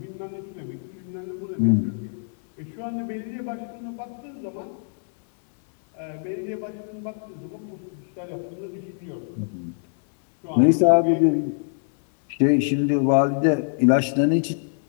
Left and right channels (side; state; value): right; silent; 62 dB below the other